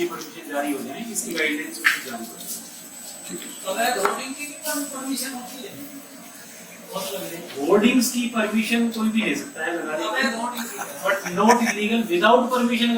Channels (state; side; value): identical; both; correlation 1.00